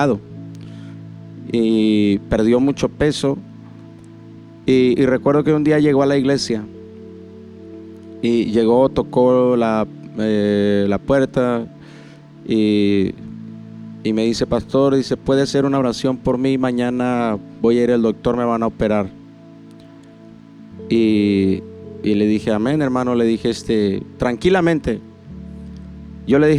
y perdió mucho peso. Y recuerdo que un día llegó a la iglesia y llegó, tocó la puerta y me dice: pastor, dice, ¿puede hacer una oración por mí? Mañana voy a ir al doctor, me van a operar. Y le dije: amén, hermano. Le dije tranquilamente. Yo le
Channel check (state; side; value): identical; both; correlation 1.00